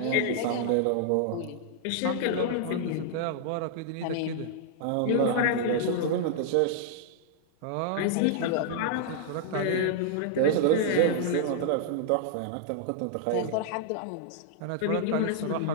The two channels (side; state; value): both; different; correlation -0.01